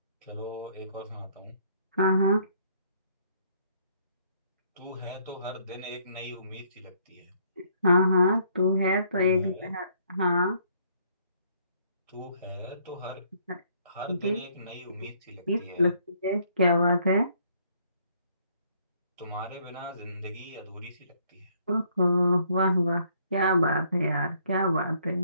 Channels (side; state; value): both; inverted; correlation -0.66